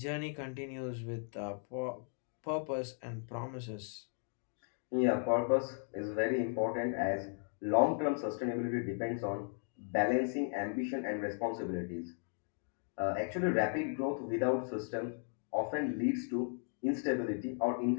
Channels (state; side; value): silent; right; 54 dB below the other